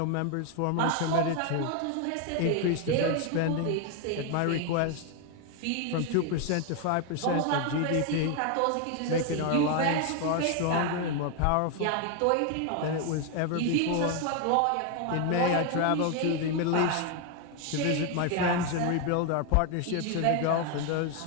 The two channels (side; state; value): both; different; correlation 0.01